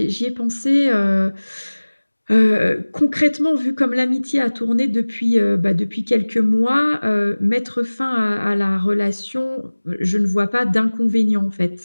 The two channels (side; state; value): both; inverted; correlation -1.00